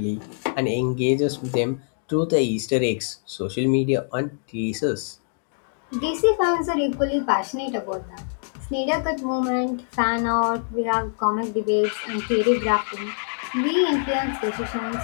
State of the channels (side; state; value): right; silent; digital silence